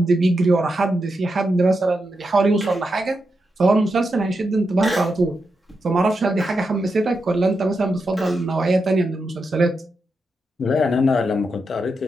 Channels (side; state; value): both; normal; correlation 0.86